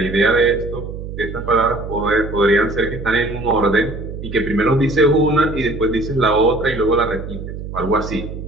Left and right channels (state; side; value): noise; right; hum, 9 dB below the sound